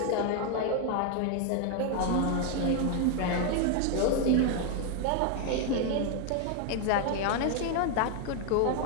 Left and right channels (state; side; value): different; both; correlation 0.00